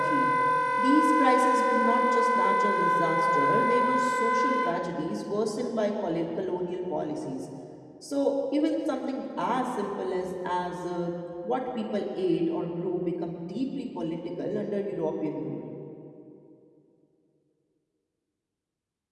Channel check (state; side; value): identical; both; correlation 1.00